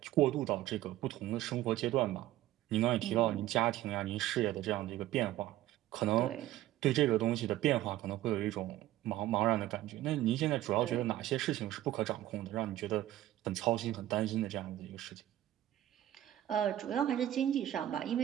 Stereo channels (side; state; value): left; quieter; 14.0 dB